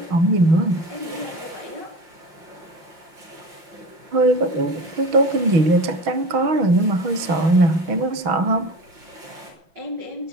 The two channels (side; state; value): left; late; 6.1 ms